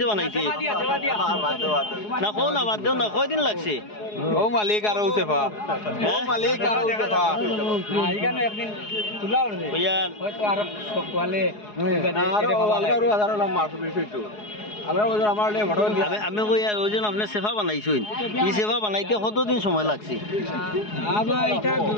বানাইতে না কো না বাদ দেও না কয়দিন লাগছে ও মালিক আর ওসেফা ও মালিক আর ওসেফা এখানে একদিন তুলা উঠবে ইয়ার হয়তো আর সকলে আরো হাজার মাছ বেশিটো আমি কই আর ওজন আপনি সেফা বানাইছেন এই সেফা বানাইতে কতদিন সময় লাগছে আবার এটা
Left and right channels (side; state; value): right; late; 4.8 ms